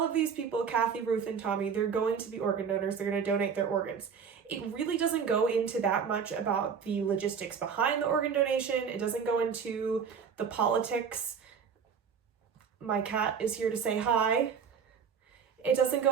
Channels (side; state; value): left; quieter; 6.7 dB